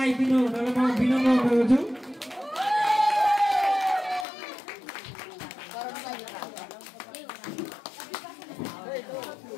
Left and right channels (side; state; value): right; drops out; at 4.2 s